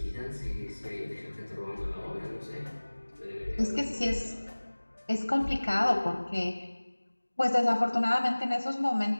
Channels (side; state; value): both; inverted; correlation -1.00